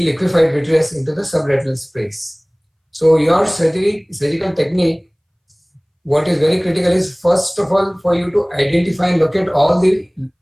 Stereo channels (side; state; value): both; identical; correlation 1.00